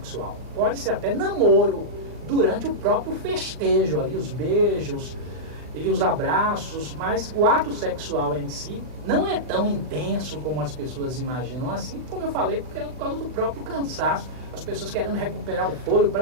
Pode ser até namoro, durante o próprio festejo ali, os beijos e os abraços, mas o ato sexual em si não é tão intenso como as pessoas imaginam assim, como eu falei, porque é por causa do próprio cansaço, as pessoas querendo recuperar o fôlego para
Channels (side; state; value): left; late; 39 ms